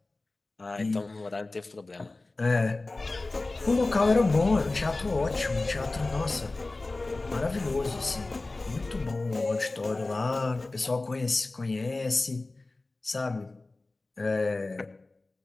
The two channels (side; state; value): right; quieter; 3.2 dB